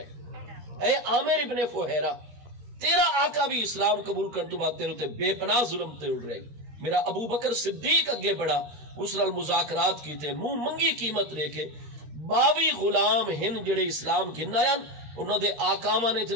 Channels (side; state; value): left; late; 13 ms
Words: اے عامر ابن فہیرہ، تیرا آقا بھی اسلام قبول کرنے تو بعد تیرے تے بے پناہ ظلم تے اڑ رہی، میرا ابو بکر صدیق اگے بڑا، اس نال مذاکرات کیتے، منہ منگی قیمت لے کے 22 غلام ہن جڑے اسلام گھن آیا، انہوں دے آقاواں نے